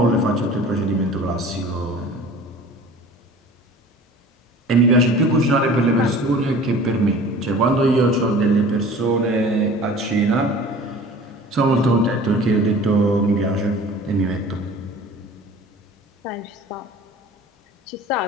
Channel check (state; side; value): normal; both; correlation 0.43